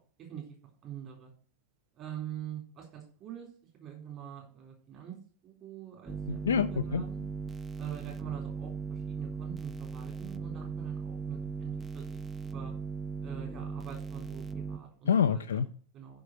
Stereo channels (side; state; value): both; normal; correlation -0.15